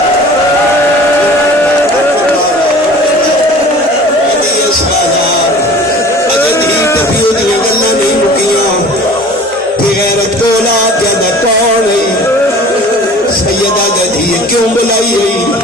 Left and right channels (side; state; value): both; normal; correlation 0.43